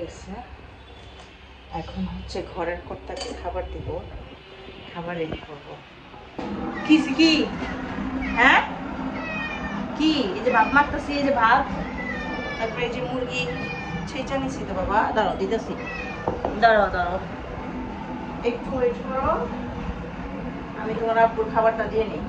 গেছে। এখন হচ্ছে ঘরের কর্তাকে খাবার দিব, খাবার রেডি করবো। কি কি হ্যাঁ কি এই যে ভাত মারতেছি, এই যে ভাত, তারপরে এই যে মুরগি ছেঁচা নিছি তো বাবা, দাঁড়াও দিতেছি, দাঁড়াও দাঁড়াও একটু ওয়েট করো, আমি তোমার আব্বুর খাবারটা দিয়ে নিই।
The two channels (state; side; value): identical; both; correlation 1.00